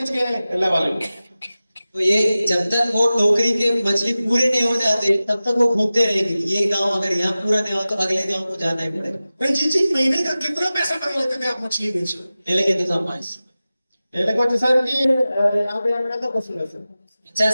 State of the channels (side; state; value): both; inverted; correlation -0.96